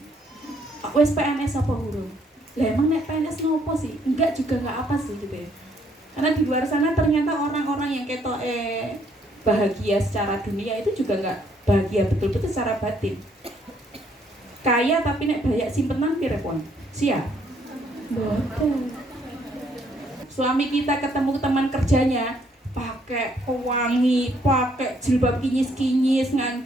Wes PNS apa hurung? Lah emang nek PNS nopo sih? Enggak juga enggak apa sih gitu ya. Karena di luar sana ternyata orang-orang yang ketok bahagia secara dunia itu juga enggak bahagia betul-betul secara batin. Kaya tapi nek banyak simpenan pirepon. Siap? Betul. Suami kita ketemu teman kerjanya pakai pewangi, pakai jilbab kinyis-kinyis,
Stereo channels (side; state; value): both; normal; correlation 0.68